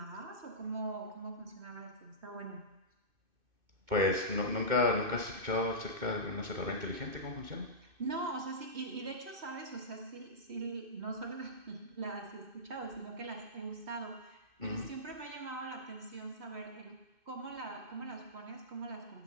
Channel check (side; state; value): left; late; 2.6 ms